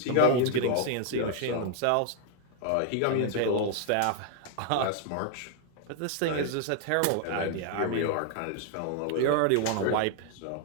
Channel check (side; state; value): both; different; correlation 0.00